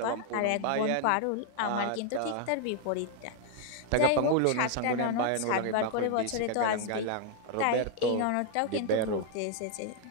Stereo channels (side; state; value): both; different; correlation 0.00